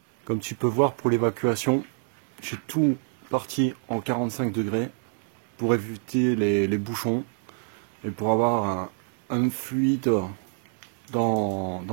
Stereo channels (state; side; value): silent; left; digital silence